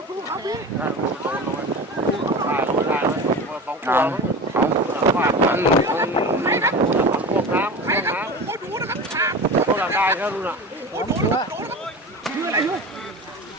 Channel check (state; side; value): normal; both; correlation 0.31